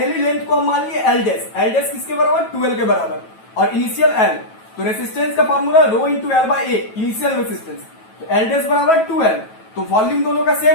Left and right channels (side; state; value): right; late; 9.2 ms